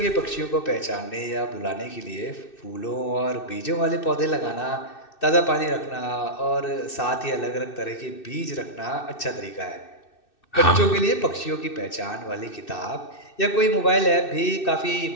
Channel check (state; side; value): late; right; 2.6 ms